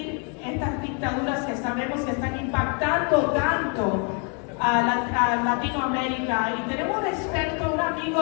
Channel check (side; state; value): right; quieter; 38.2 dB